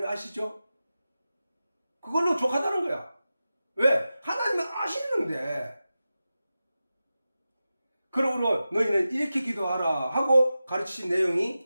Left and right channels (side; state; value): both; inverted; correlation -0.94